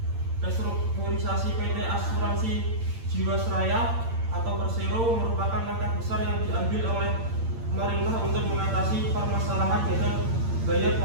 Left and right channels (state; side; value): late; left; 8.8 ms